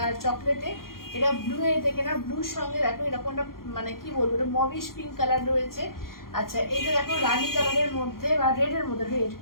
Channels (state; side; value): late; right; 0.92 ms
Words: আর চকলেটে, এটা ব্লু এ দেখে নাও, ব্লুর সঙ্গে দেখো এরকম একটা মানে কি বলবো, এটা মবিশ পিঙ্ক কালার রয়েছে। আচ্ছা এইটা দেখো রানী কালারের মধ্যে বা রেড এর মধ্যে, রেড।